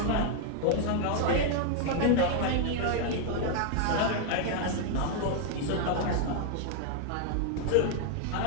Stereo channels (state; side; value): different; both; correlation 0.00